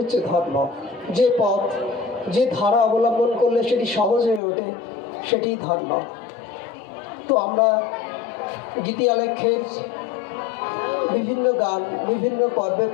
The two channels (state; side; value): drops out; right; at 4.4 s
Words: ধর্ম। যে পথ, যে ধারা অবলম্বন করলে সেটি সহজ হয়ে ওঠে, সেটি ধর্ম। তো আমরা গীতি আলেখ্যের বিভিন্ন গান বিভিন্ন পর্বে